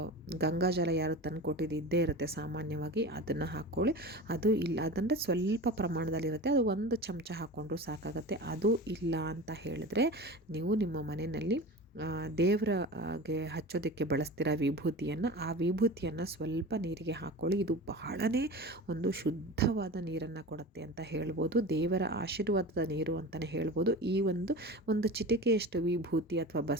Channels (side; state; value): both; normal; correlation 0.32